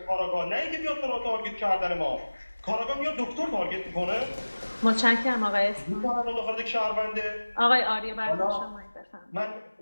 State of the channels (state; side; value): inverted; both; correlation -1.00